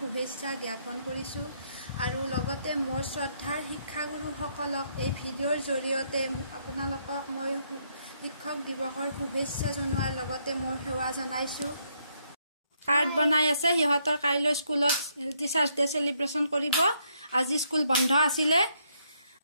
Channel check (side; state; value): both; inverted; correlation -0.73